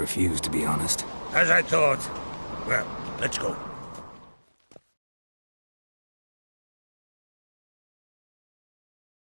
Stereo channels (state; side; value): inverted; both; correlation -1.00